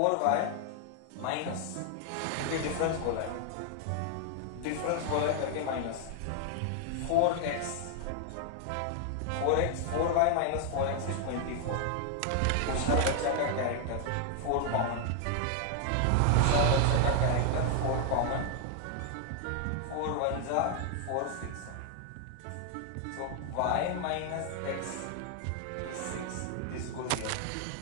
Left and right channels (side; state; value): both; different; correlation 0.00